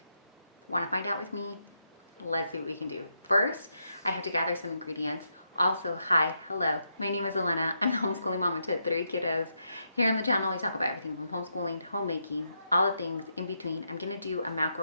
Want to find out with me? Let's see what we can do. First, I have to gather some ingredients. Also, hi, hello, my name is Elena. I'm the homeschooling mama to 3 kiddos. Here on the channel, we talk about everything from homeschooling to homemaking, all the things in between. I'm gonna do a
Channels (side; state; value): both; inverted; correlation -0.81